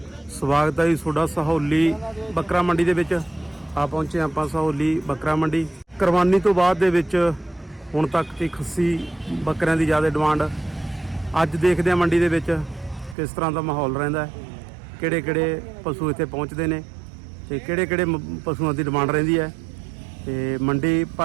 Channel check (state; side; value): drops out; left; at 13.2 s